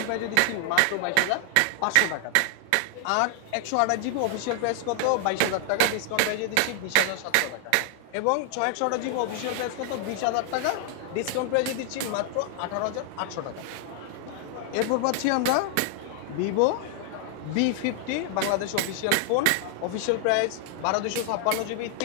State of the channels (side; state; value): both; different; correlation 0.00